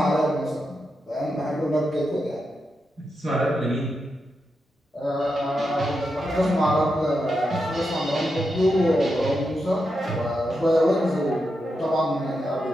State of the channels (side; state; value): both; normal; correlation 0.86